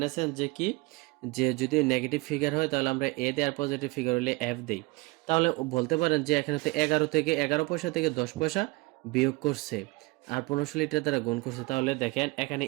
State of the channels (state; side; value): quieter; left; 24.2 dB